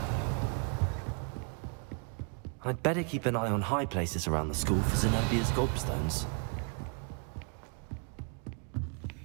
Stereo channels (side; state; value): left; quieter; 38.3 dB